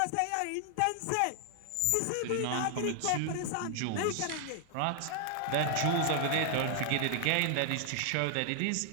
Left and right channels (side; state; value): both; different; correlation 0.00